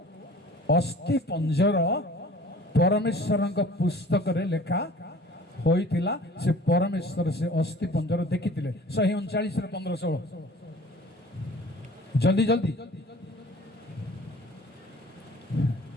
ଅସ୍ଥି ପଞ୍ଜର ପରମେଶ୍ୱରଙ୍କ ପୁସ୍ତକରେ ଲେଖା ହୋଇଥିଲା। ସେ ପରମେଶ୍ୱର ସେ ଅସ୍ଥି ପଞ୍ଜର ଦେଖିଥିଲେ। 139 15-16 ଜଲ୍ଦି ଜଲ୍ଦି।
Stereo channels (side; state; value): both; normal; correlation 0.46